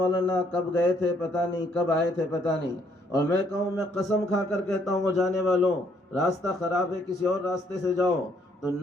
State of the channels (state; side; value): normal; both; correlation 0.68